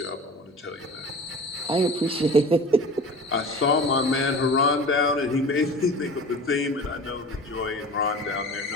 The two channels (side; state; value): both; normal; correlation 0.38